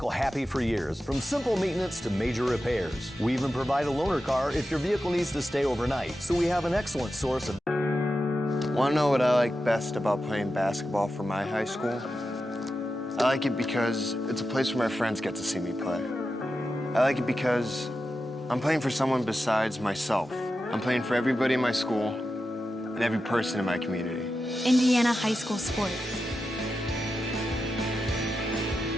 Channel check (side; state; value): both; normal; correlation 0.91